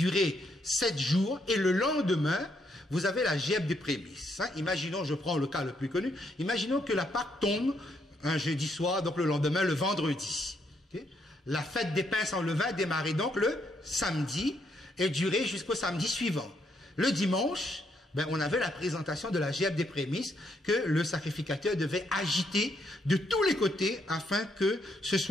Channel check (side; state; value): both; normal; correlation 0.75